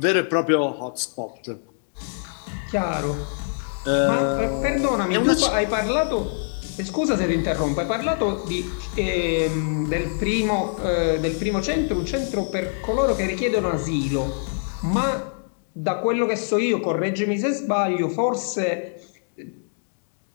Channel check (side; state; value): right; silent; digital silence